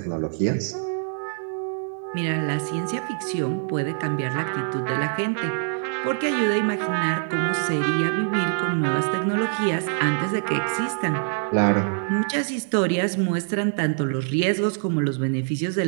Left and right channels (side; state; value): left; silent; digital silence